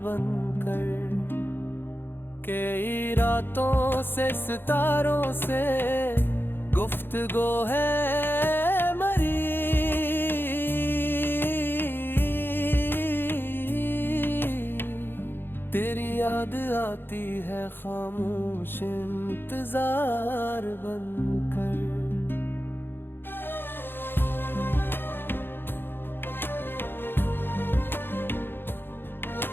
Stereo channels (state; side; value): late; right; 0.10 ms